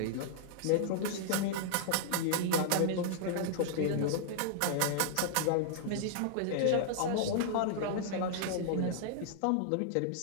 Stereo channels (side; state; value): both; different; correlation -0.01